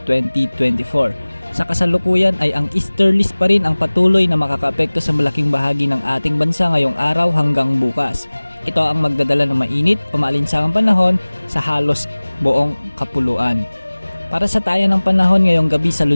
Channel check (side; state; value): both; inverted; correlation -1.00